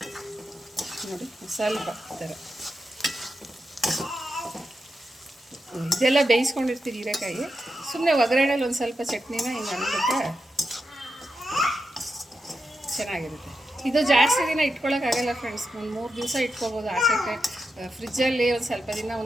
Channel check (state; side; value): normal; both; correlation 0.88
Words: ನೋಡಿ ಸ್ವಲ್ಪ ಈ ಥರ ಇದೆಲ್ಲ ಬೇಯಿಸ್ಕೊಂಡಿರ್ತೀವಿ ಹೀರೆಕಾಯಿ. ಸುಮ್ಮನೆ ಒಗ್ಗರಣೆಲಿ ಒಂದು ಸ್ವಲ್ಪ ಚಟ್ನಿನ ಹಿಂಗೆ ಅಂದ್ಬಿಟ್ರೆ ಚೆನ್ನಾಗಿರುತ್ತೆ. ಇದು ಜಾಸ್ತಿ ದಿನ ಇಟ್ಕೊಳ್ಳೋಕ್ಕಾಗಲ್ಲ ಫ್ರೆಂಡ್ಸ್. ಒಂದು 3 ದಿವಸ ಇಟ್ಕೊಬೋದು ಆಚೆಗೆ. ಫ್ರಿಜ್ಜಲ್ಲಿ ಒಂದು ಸ್ವಲ್ಪ ದಿನ,